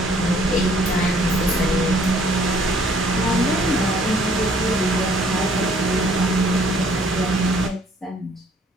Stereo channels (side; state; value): both; normal; correlation 0.60